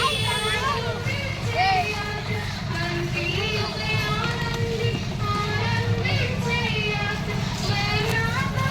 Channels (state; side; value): identical; both; correlation 1.00